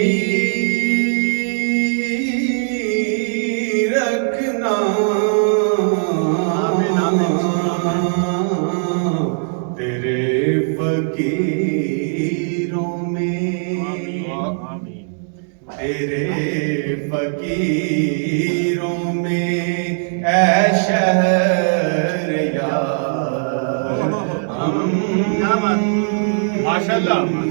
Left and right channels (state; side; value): silent; left; digital silence